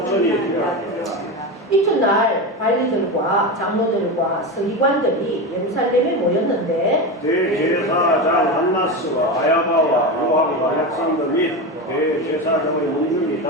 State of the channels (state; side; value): normal; both; correlation 0.20